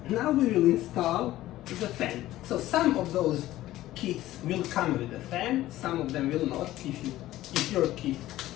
Now we will install the fan. So some of those kits will come with a fan, some of them will not. If your kit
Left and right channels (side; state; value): right; quieter; 15.2 dB